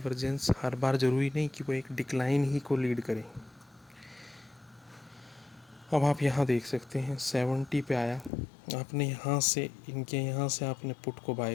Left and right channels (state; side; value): drops out; right; at 8.3 s